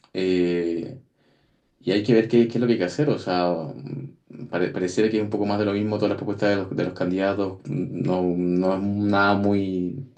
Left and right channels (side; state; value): both; identical; correlation 1.00